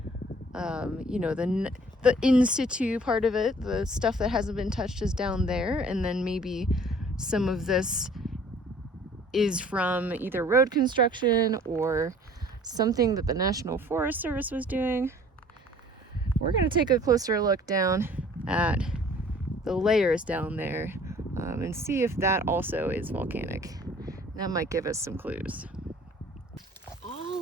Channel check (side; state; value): both; normal; correlation 0.52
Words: The in situ part of it, the stuff that hasn't been touched is down there, and then maybe some of this is from either road construction or something that the National Forest Service was doing. We're gonna take a closer look down at the layers down there and see if that also is volcanic. That might give us some clues.